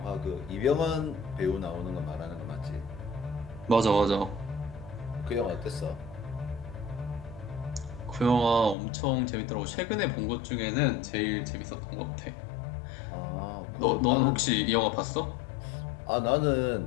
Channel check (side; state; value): right; drops out; at 8.8 s